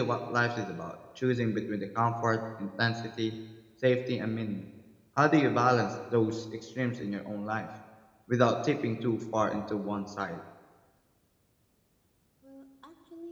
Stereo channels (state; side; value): identical; both; correlation 1.00